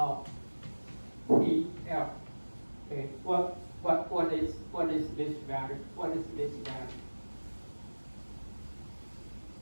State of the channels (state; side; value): inverted; both; correlation -1.00